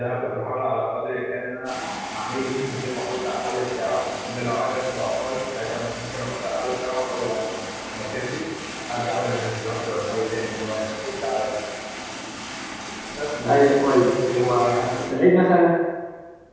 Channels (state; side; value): identical; both; correlation 1.00